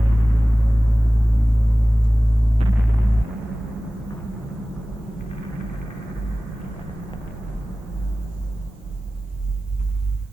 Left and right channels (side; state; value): both; normal; correlation 0.97